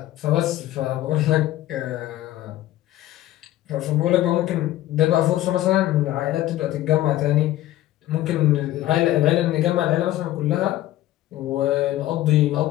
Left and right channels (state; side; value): quieter; right; 14.7 dB